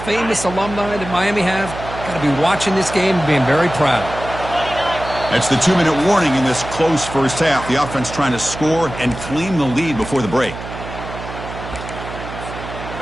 alumni that Miami have, got to be watching this game and being very proud. That's the 2-minute warning in this close first half. The offense trying to score and claim the lead before the break.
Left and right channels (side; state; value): right; noise; hum, 11 dB below the sound